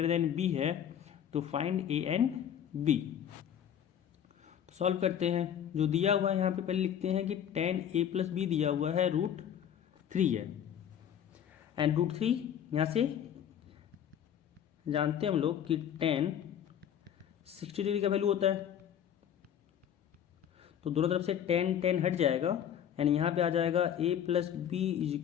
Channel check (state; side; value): quieter; right; 9.4 dB